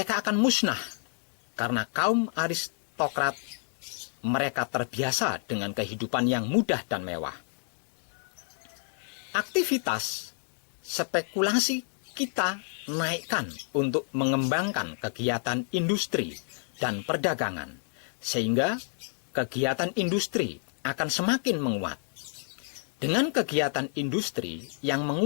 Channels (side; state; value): right; silent; 58 dB below the other